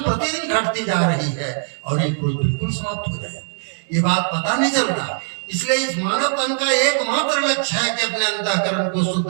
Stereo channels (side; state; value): left; silent; digital silence